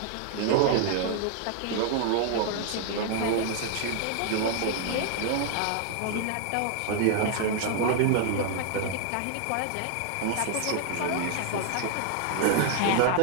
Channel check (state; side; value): different; both; correlation 0.00